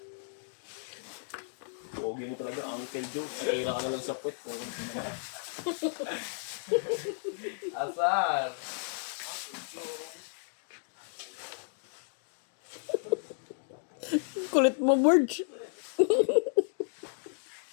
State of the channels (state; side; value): silent; right; digital silence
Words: Pogi mo talaga, Uncle Joe. Patira ka na lang sa puwet ko. Asar! Kulit mo, Borge.